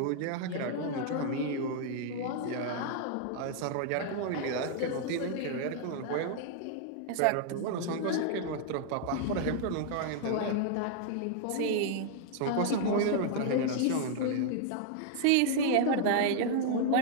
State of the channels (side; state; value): both; different; correlation -0.01